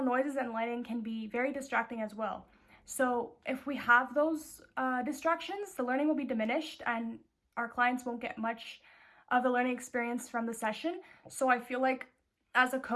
noises and lighting can be very distracting as well. So if we have those distractions, the learning will be diminished and our clients won't get much of the learning experience from the session. So I feel like as a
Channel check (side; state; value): both; identical; correlation 1.00